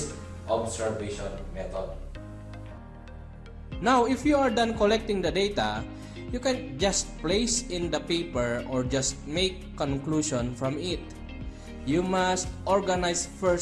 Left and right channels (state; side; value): identical; both; correlation 1.00